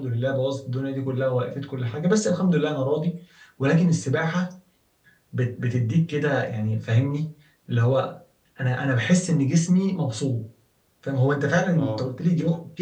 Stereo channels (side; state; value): both; identical; correlation 1.00